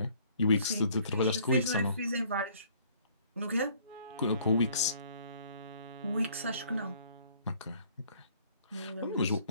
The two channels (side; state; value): both; inverted; correlation -0.59